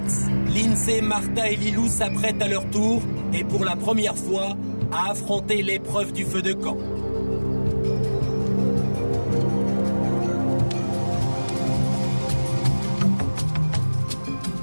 Lindsay, Martha et Lilou s'apprêtent à leur tour et pour la première fois à affronter l'épreuve du feu de camp.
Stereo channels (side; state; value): both; inverted; correlation -1.00